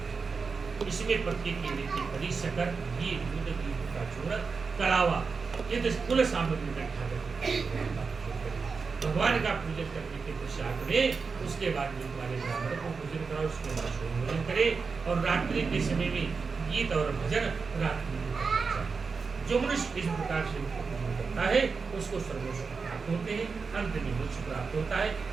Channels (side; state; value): left; quieter; 4.9 dB